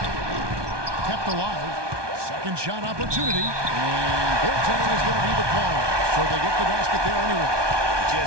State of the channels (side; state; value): left; late; 1.2 ms